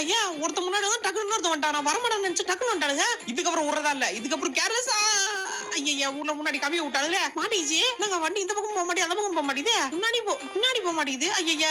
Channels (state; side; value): identical; both; correlation 1.00